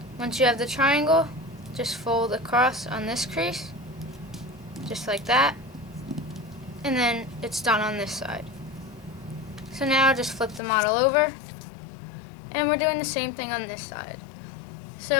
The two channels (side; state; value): right; drops out; at 10.6 s